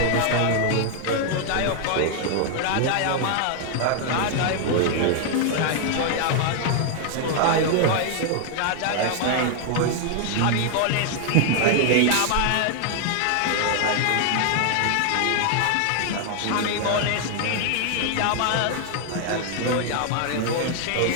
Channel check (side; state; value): both; different; correlation 0.00